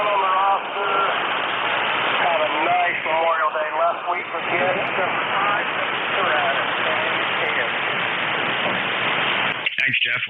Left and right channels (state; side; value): identical; both; correlation 1.00